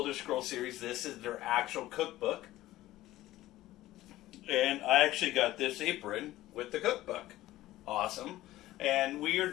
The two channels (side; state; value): right; quieter; 15.9 dB